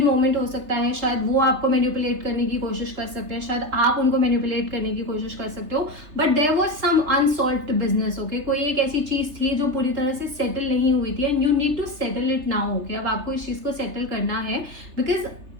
मोमेंट हो सकता है। शायद वो आपको मैनिपुलेट करने की कोशिश कर सकते हैं, शायद आप उनको मैनिपुलेट करने की कोशिश कर सकते हो, but there was some unsolved business okay. कोई एक ऐसी चीज थी जो पूरी तरह से सेटल नहीं हुई थी and you need to settle it now okay. अब आपको इस चीज को सेटल करना है बिकॉज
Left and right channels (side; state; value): left; late; 3.3 ms